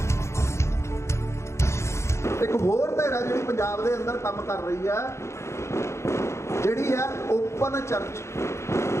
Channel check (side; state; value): right; late; 0.13 ms